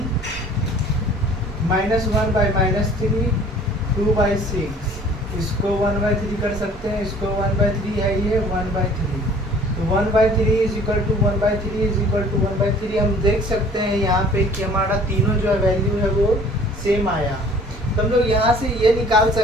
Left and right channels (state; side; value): normal; both; correlation 0.52